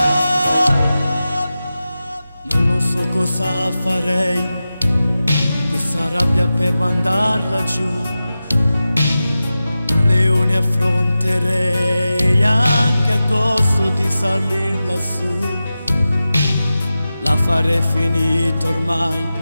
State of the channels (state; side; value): inverted; both; correlation -0.93